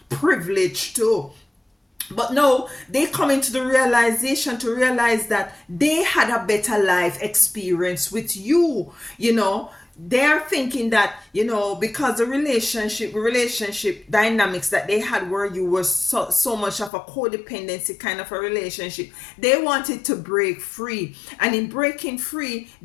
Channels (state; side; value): drops out; right; at 16.9 s